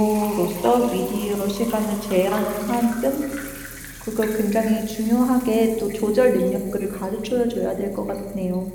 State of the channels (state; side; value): identical; both; correlation 1.00